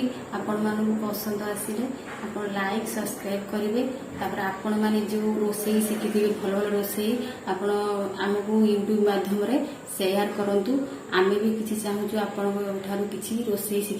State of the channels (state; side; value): identical; both; correlation 1.00